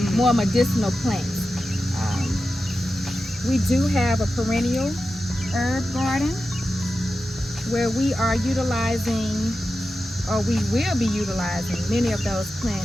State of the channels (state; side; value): normal; both; correlation 0.92